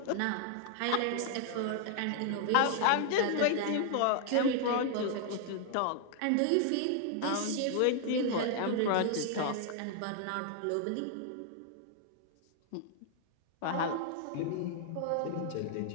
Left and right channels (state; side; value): different; both; correlation 0.00